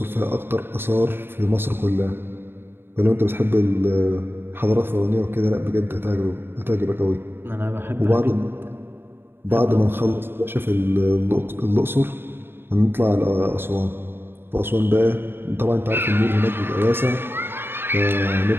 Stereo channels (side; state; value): left; late; 0.11 ms